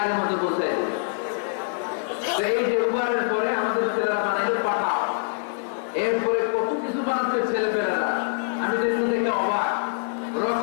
মতো পৌঁছায় দেবে। এই যে উবারের পরে আমাদের ছেলেরা বানাইলো পাঠাও। এরপরে কত কিছু বানাচ্ছে ছেলেপেলেরা, আমি দেখুন দেখে অবাক।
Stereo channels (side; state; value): right; silent; digital silence